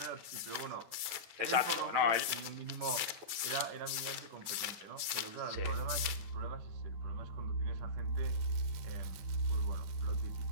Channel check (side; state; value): left; late; 9.1 ms